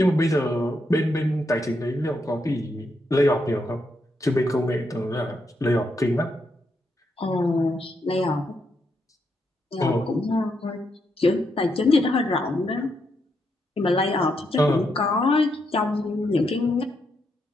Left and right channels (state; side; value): normal; both; correlation 0.80